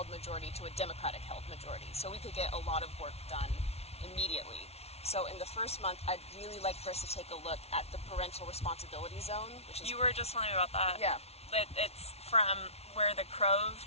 majority to a Democratic-held majority, so we could get a lot of work done immediately. So in the first month, I'd really like for us to take a look at the parental responsibility zone, which is... You were just telling me about that. Yeah. It's from where the crow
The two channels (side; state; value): right; late; 0.31 ms